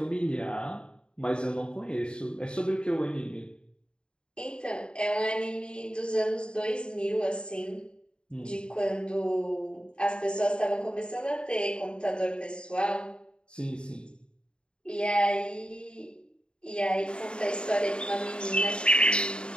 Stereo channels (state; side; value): late; right; 0.052 ms